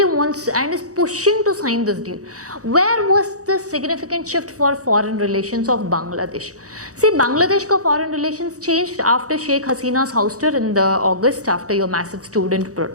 wants and is pushing to sign this deal. Where was the significant shift for foreign relations of Bangladesh? See, Bangladesh ka foreign relations changed after Sheikh Hasina's ouster in the August after your massive student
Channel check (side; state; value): left; late; 0.66 ms